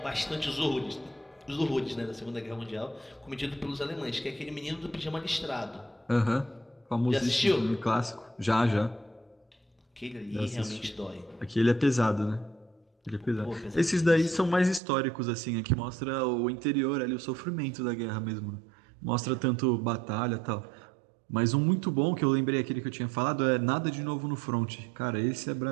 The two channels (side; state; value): left; drops out; at 14.8 s